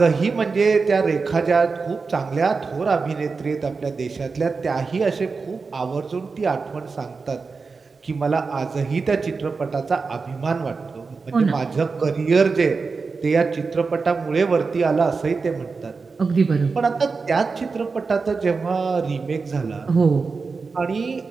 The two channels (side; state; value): left; quieter; 4.6 dB